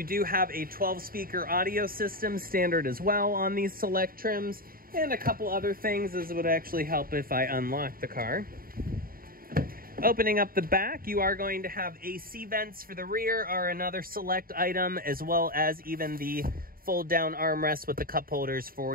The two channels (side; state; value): left; late; 0.42 ms